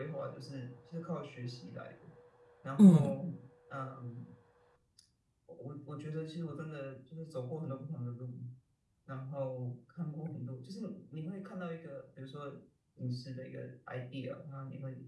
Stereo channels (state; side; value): identical; both; correlation 1.00